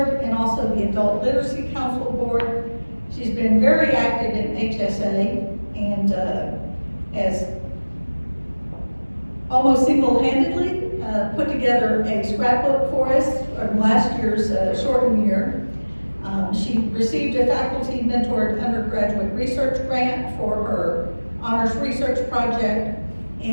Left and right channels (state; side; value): inverted; both; correlation -1.00